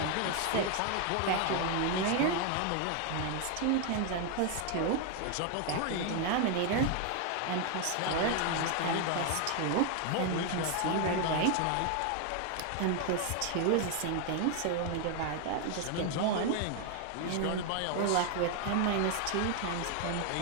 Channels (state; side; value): different; both; correlation 0.01